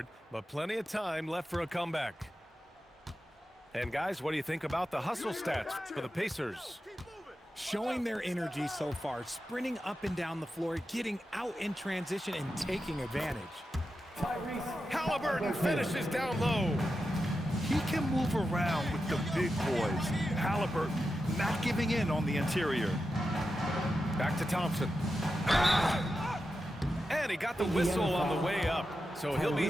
but plenty of time left for a comeback. And guys, what do you think about the hustle stats for the Pacers? Showing their energy so far, sprinting up and down the floor, getting out in transition, and taking advantage. Halliburton finishes down low. He can move around with the big boys. Halliburton not giving in on the interior. Back to Thompson. And he got the whistle on the way up, so he'll be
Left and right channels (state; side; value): normal; both; correlation 0.90